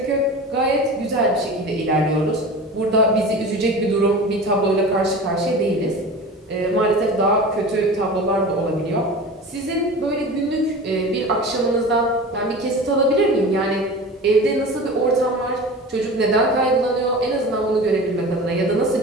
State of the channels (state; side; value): normal; both; correlation 0.34